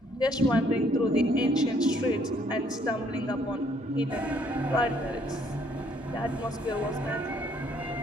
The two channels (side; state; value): both; normal; correlation 0.65